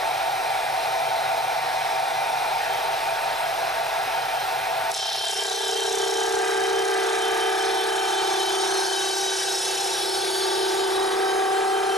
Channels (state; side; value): normal; both; correlation 0.49